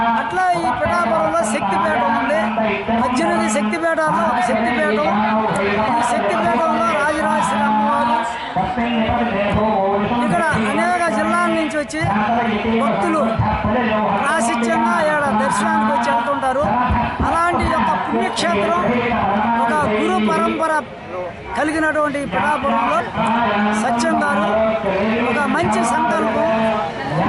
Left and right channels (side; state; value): both; identical; correlation 1.00